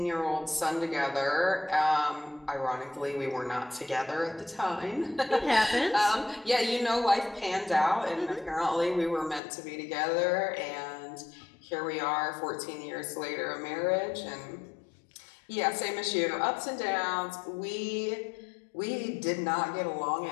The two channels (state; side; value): drops out; right; at 9.4 s